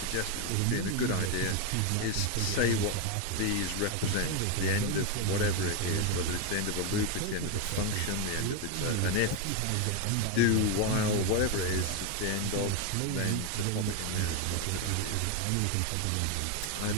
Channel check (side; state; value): both; different; correlation 0.02